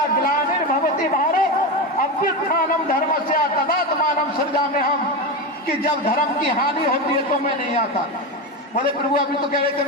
ग्लानिर्भवति भारत अभ्युत्थानम धर्मस्य तदात्मानं सृजाम्यहम्। कि जब धर्म की हानि होती है तो मैं नहीं आता। बोले प्रभु अभी तो कह रहे थे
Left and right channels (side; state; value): both; normal; correlation 0.17